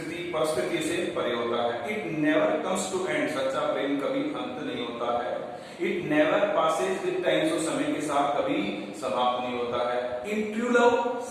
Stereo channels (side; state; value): both; identical; correlation 1.00